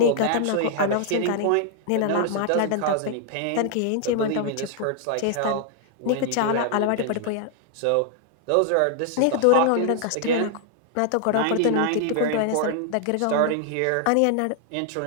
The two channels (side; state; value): both; different; correlation 0.00